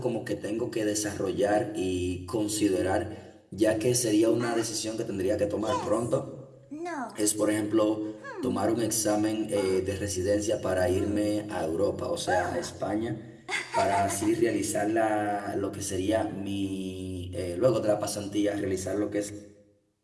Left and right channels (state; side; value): identical; both; correlation 1.00